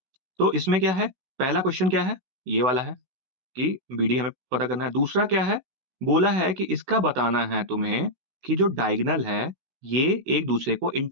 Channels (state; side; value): late; left; 16 ms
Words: तो इसमें क्या है, पहला क्वेश्चन क्या है, ये वाला है कि बीडी हमें पता करना है। दूसरा क्या है, बोला है कि इसका बताना है तुम्हें कि जो डायगोनल है ये एक दूसरे को